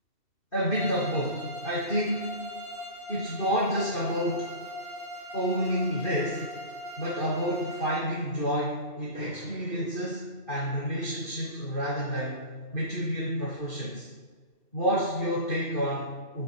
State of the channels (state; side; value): late; right; 2.7 ms